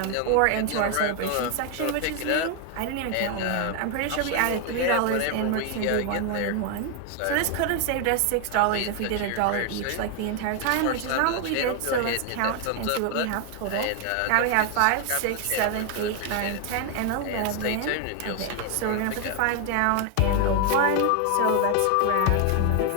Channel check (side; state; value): both; different; correlation 0.00